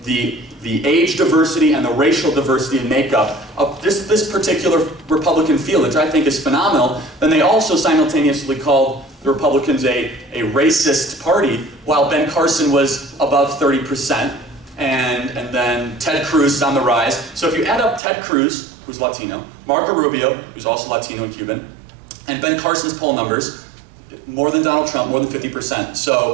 the age diversity and the racial diversity and makeup of this particular Republican field, which I think is phenomenal. Then they also simultaneously called the Republicans a racist party, while Ben Carson was above 30%, and then Ted Cruz is on the rise. So if you add up Ted Cruz, who's Latino, Marco Rubio, who's also Latino and Cuban, and Ben Carson's poll numbers, more than Donald Trump, more than 50%.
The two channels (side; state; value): left; drops out; at 18.0 s